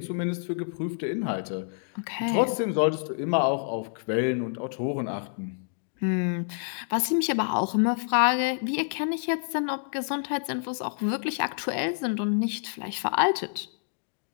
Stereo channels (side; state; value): right; silent; digital silence